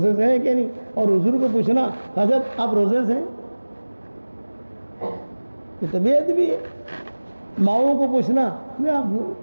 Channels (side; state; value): both; inverted; correlation -1.00